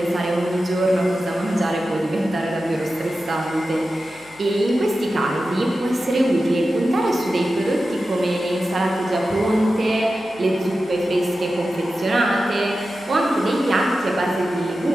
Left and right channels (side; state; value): right; noise; hum, 29 dB below the sound